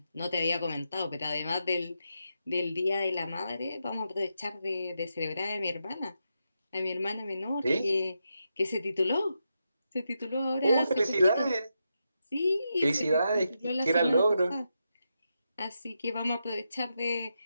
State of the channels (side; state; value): both; inverted; correlation -0.85